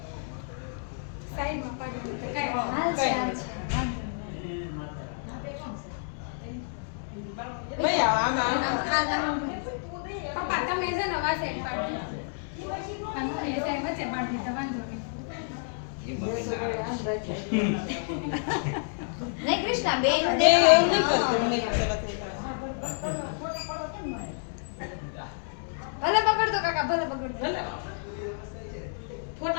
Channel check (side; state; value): right; silent; digital silence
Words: સાઈડમાં પાડો તો કઈ હાલ છે ભાઈ આમાં પપ્પા તમે છે ને વા સાઈડ પાડો અને હું એ સાઈડ વચ્ચે પાડી તો વાંધો નહીં નહીં કૃષ્ણા બેન એવું નહીં કરતું ભલે બગડતો કાકા ભલે બગડતો ભલે